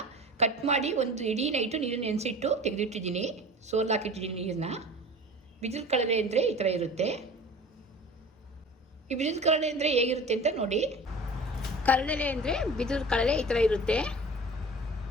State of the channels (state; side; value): normal; both; correlation 0.39